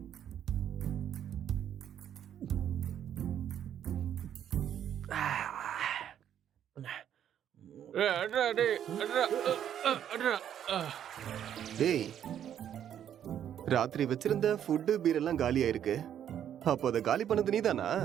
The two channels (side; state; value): left; quieter; 9.9 dB